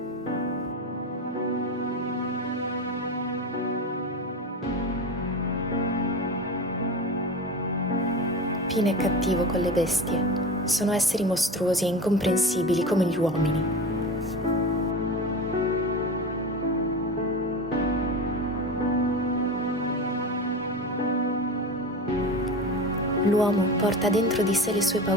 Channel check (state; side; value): normal; both; correlation 0.28